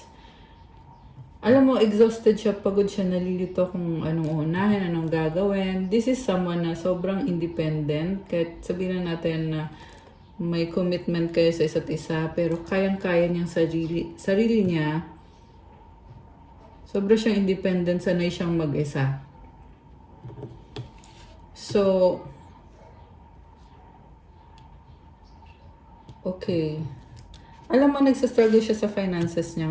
Alam mo, exhausted siya, pagod siya, nalilito kung anong unahin, anong gagawin. This is someone na sobrang independent. Kahit sabihin na natin na may commitment kayo sa isa't isa, pero kayang-kaya niyang sarili niya. Sobra siyang independent, sanay siyang mag-isa. So, okay. Alam mo, nagsastruggle siya sa finances niya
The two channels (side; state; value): both; identical; correlation 1.00